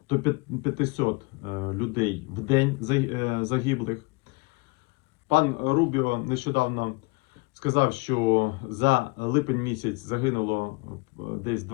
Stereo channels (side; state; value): right; quieter; 28.4 dB